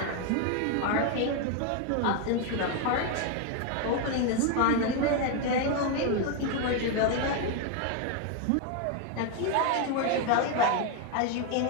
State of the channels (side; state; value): both; different; correlation 0.01